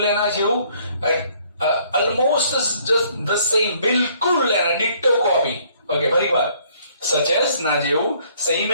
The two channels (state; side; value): inverted; both; correlation -0.62